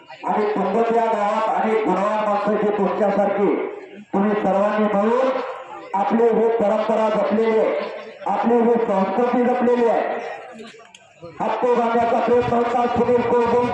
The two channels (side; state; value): both; identical; correlation 1.00